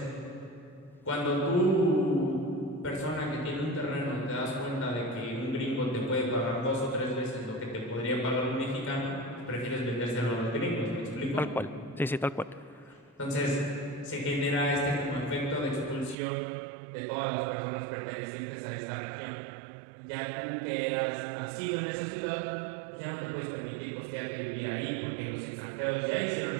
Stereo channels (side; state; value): left; drops out; at 16.2 s